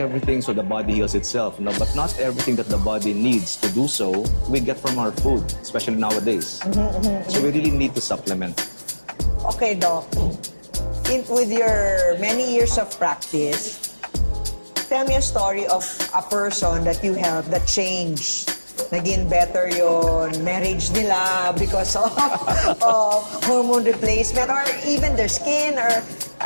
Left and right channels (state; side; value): inverted; both; correlation -1.00